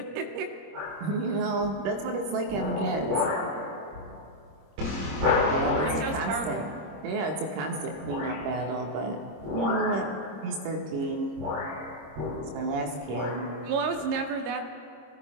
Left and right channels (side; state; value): left; late; 26 ms